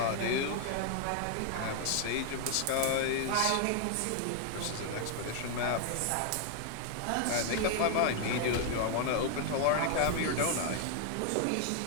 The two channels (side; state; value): both; different; correlation 0.00